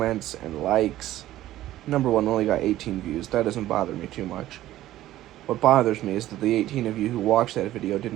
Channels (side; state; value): left; quieter; 14.3 dB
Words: and likes, number one, only got 18 views. That doesn't bother me too much. What bothers me is that the 18 of you who watched that video